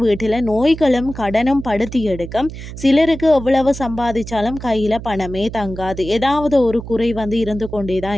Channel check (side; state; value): right; noise; hum, 11 dB below the sound